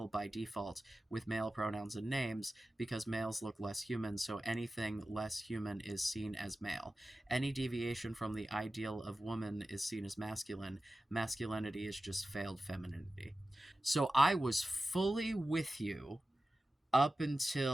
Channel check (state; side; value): normal; both; correlation 0.94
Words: by default, with male pronouns and names, because males look less human, so anything less human is seen as male. Any deviation from the ideal of woman is seen as masculine. Masculinity is just failed femininity. So I was fully with you up